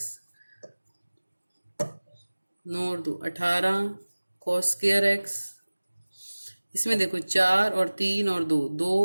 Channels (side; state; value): both; inverted; correlation -1.00